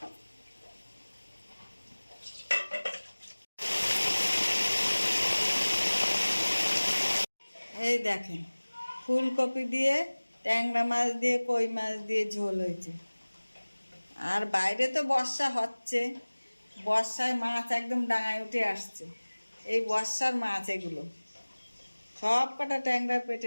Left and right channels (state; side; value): inverted; both; correlation -1.00